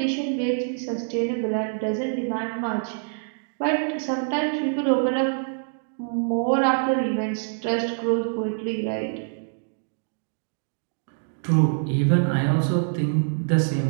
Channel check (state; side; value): silent; left; digital silence